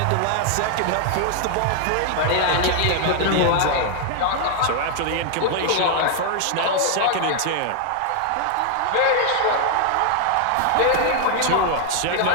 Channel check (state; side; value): different; both; correlation 0.00